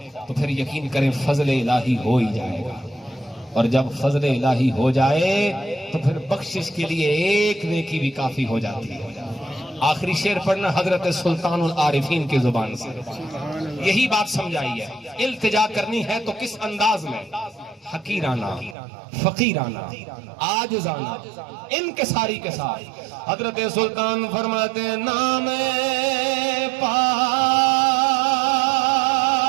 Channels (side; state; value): left; drops out; at 18.8 s